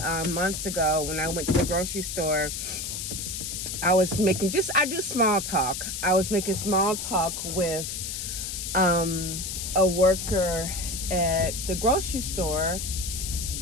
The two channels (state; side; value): noise; left; hiss, 5 dB below the sound